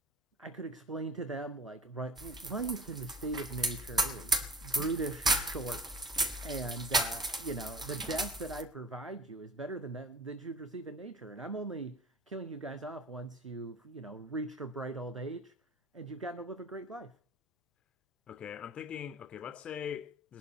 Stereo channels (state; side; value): normal; both; correlation 0.43